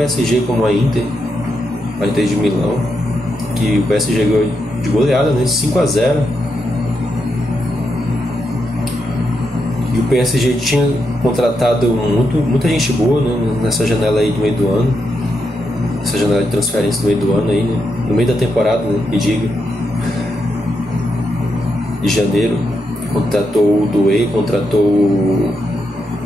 como a Inter de Milão, que o PSG ganhou de goleada, né, 5-0. E o PSG tinha contratado muita gente boa, né, nessa janela aí do meio do ano, essa janela de transferência do meio do ano aí, né, no meio da temporada, né, me diga, de janeiro. Contratou o Doué, contratou o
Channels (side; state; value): both; normal; correlation 0.83